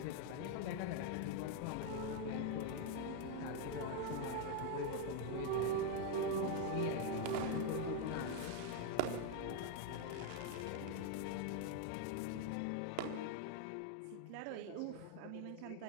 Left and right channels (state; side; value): different; both; correlation 0.01